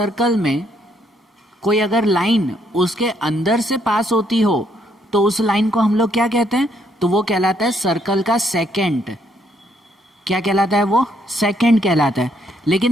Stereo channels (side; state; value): both; normal; correlation 0.71